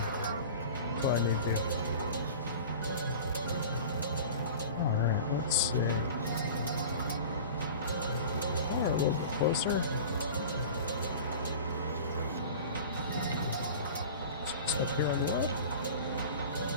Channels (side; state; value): both; inverted; correlation -0.37